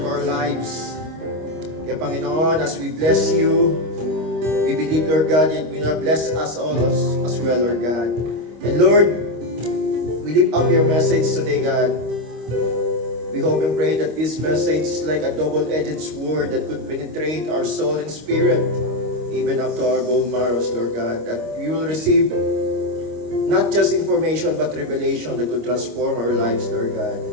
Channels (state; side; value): late; left; 25 ms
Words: our lives. Kaya Panginoon, as we bless you, we believe, Lord God, that you will bless us all as well, Lord God. And Lord, we lift up your message today, God. We hope and pray that this message is like a double-edged sword that could penetrate our soul and spirit, even up to our bone marrows, Lord God. That we will receive not just information, but revelation that could transform our lives, Lord God.